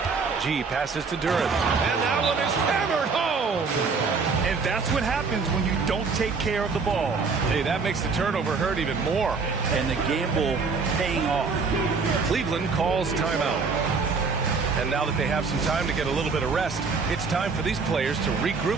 G passes to Duran. And that one is hammered home. And that's what happens when you don't take care of the ball. Hey, that makes the turnover hurt even more. And the gamble paying off. Cleveland calls timeout. And now that they have some time to get a little bit of rest, it's time for these players to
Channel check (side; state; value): left; quieter; 4.8 dB